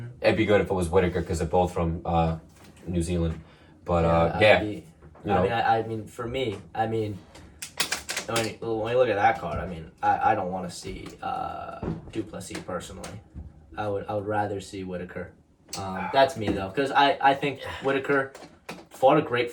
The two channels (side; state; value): both; identical; correlation 1.00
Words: it'd be good if it was Whitaker because they're both from New Zealand. But for me, when you look at that card, I don't want to see Duplessis personally. I would rather see Whitaker. That's me though, because I think Whitaker fought a great